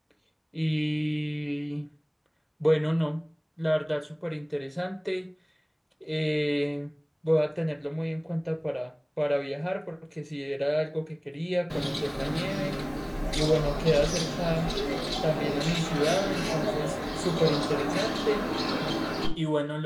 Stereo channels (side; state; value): both; identical; correlation 1.00